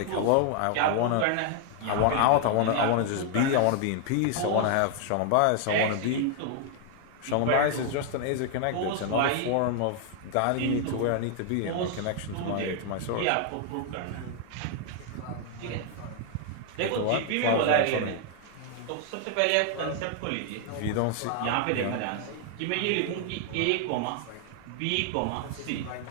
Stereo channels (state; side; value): different; both; correlation 0.00